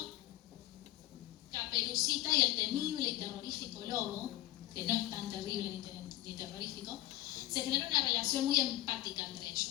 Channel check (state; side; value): quieter; right; 15.9 dB